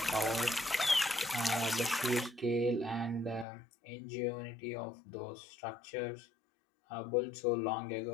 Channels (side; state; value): right; drops out; at 3.5 s